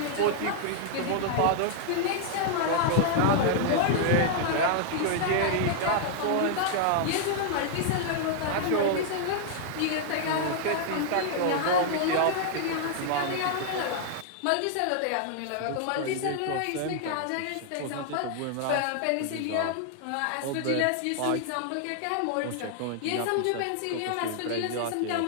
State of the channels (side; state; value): both; different; correlation -0.01